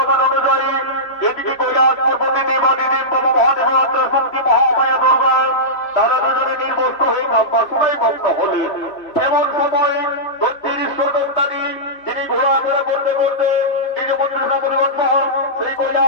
অনুযায়ী এদিকে কৈলাস পর্বতী দেবাদিদেব বাবা মহাদেব শক্তি মহামায়া দুর্গা তারা দুজনে নির্বস্ত হয়ে কাম্বা শুনাই মগ্ন হলেন এমন সময় দক্ষিণ ঈশ্বর দত্তানি যিনি ঘোরাফেরা করতে করতে নিজ মন্ত্রিসা পরিবর্তন সেই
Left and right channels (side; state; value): right; late; 3.0 ms